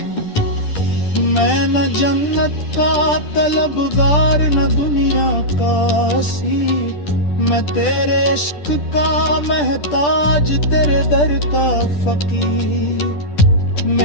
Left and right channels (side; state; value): right; late; 10 ms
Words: मैं न जन्नत का तलबगार न दुनिया का सी, मैं तेरे इश्क का महताज तेरे दर का फकीर।